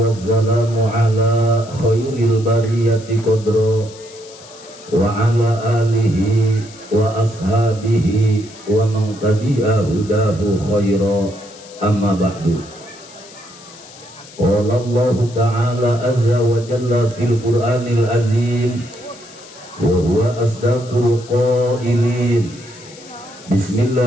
ala khairil bariyati qadra wa ala alihi wa ashabihi wa man tabi'a hudahu khaira, amma ba'du. Qala Allah ta'ala azza wa jalla fil Qur'anil azim wa huwa asdaqul qailin.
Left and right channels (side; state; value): left; noise; hiss, 20 dB below the sound